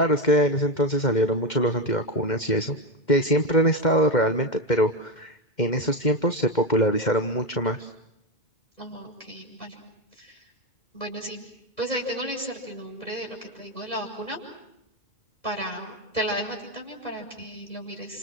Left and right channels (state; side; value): late; right; 2.1 ms